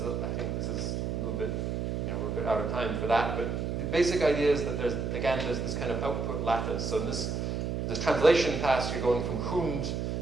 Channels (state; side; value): noise; right; hum, 1 dB below the sound